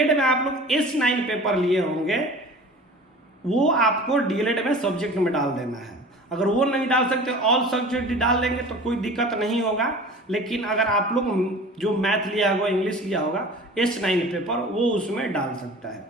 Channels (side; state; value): both; normal; correlation 0.41